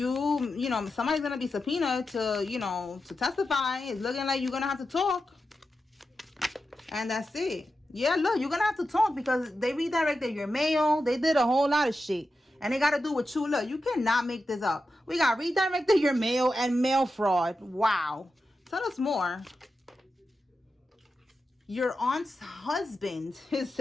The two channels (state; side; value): normal; both; correlation 0.90